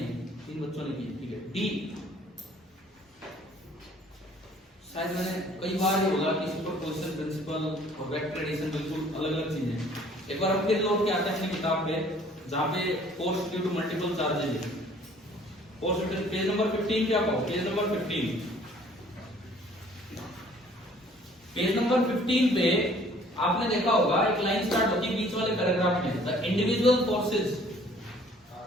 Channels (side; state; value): both; normal; correlation 0.56